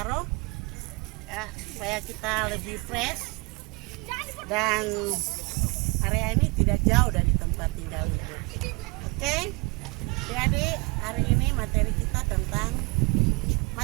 ya, supaya kita lebih fresh dan area ini tidak jauh dari tempat tinggal ibu. Oke, jadi hari ini materi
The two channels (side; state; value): left; quieter; 28.6 dB